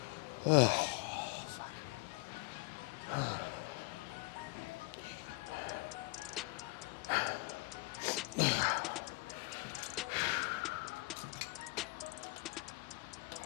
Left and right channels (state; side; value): quieter; right; 27.7 dB